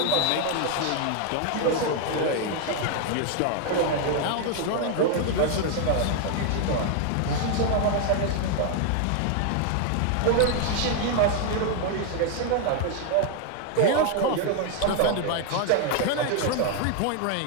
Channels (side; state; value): both; different; correlation 0.01